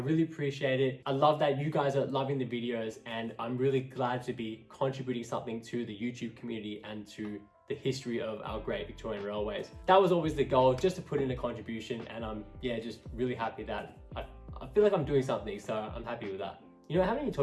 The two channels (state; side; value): identical; both; correlation 1.00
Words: appreciate it. I love that you guys are loving the videos and I'm really glad to be contributing something to the YouTube community and to the history of our great Victorian railways. That was always the goal, just to put in a contribution, and I'm just really happy that I feel like I'm doing something, so I'm happy with that. You know, I haven't even